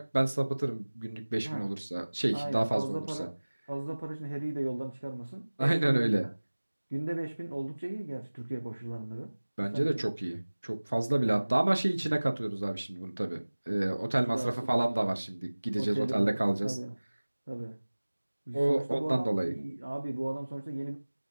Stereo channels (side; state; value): both; inverted; correlation -1.00